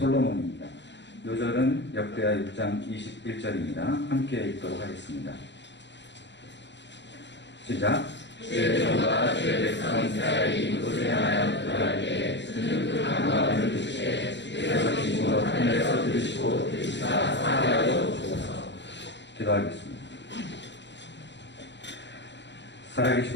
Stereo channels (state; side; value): late; right; 0.52 ms